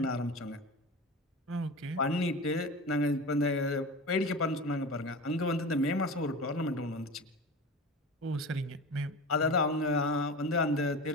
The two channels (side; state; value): both; normal; correlation 0.30